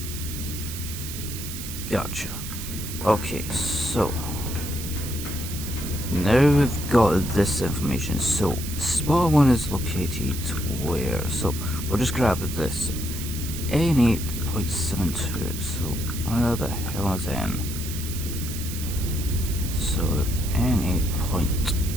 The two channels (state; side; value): noise; right; hiss, 9 dB below the sound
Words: Gotcha. Okay, so now we've got this information. So spot 1 is located where? So we'll just grab this. N8.72. So where the hell is N? So